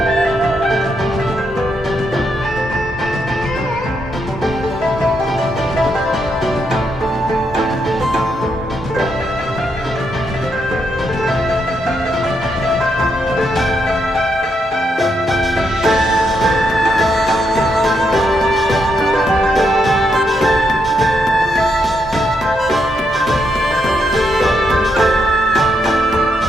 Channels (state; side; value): normal; both; correlation 0.79